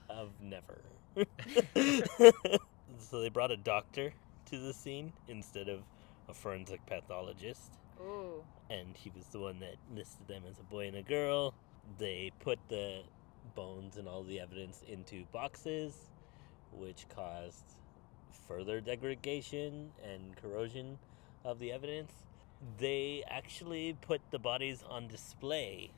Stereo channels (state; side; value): quieter; right; 25.9 dB